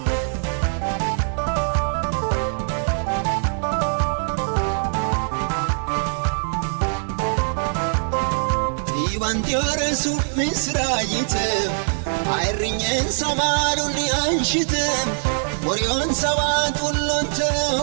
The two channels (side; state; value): left; silent; digital silence